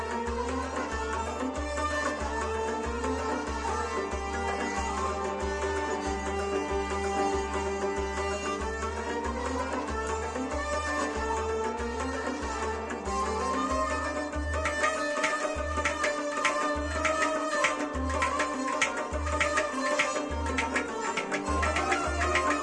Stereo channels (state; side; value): identical; both; correlation 1.00